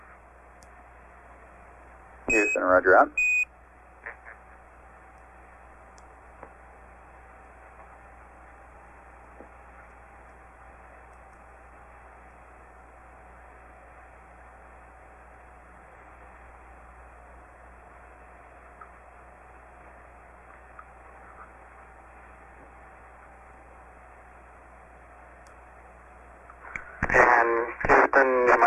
Houston, roger out. And Houston, you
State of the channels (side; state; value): both; identical; correlation 1.00